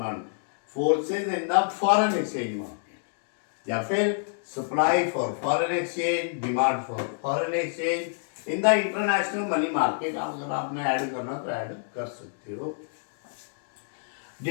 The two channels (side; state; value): right; silent; digital silence